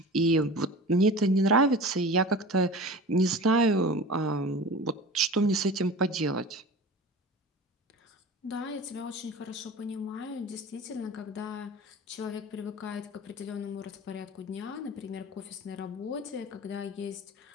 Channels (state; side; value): normal; both; correlation 0.36